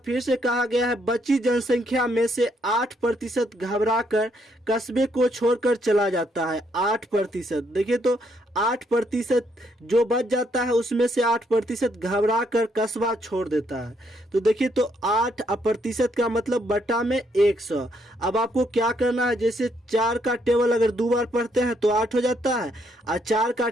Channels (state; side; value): normal; both; correlation 0.73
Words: फिर से कहा गया है बची जनसंख्या में से 8% घबराकर कस्बे को छोड़कर चला जाता है। 8%, देखिए तो 8% जो बच जाता है उसमें से 8% घबराकर कस्बा छोड़ देता है। तो देखिए तो 8% का मतलब बटा में 100। अब आपको क्या करना है, जैसे 4 का टेबल अगर 2 बार पढ़ते हैं तो 8 हो जाता है, और 4 का